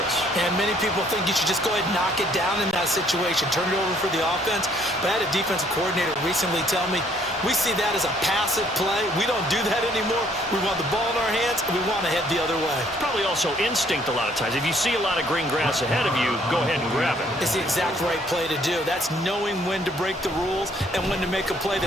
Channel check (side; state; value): both; normal; correlation 0.64